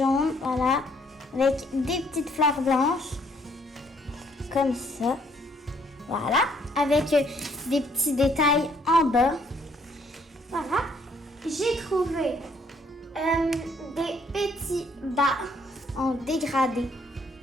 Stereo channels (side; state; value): both; normal; correlation 0.66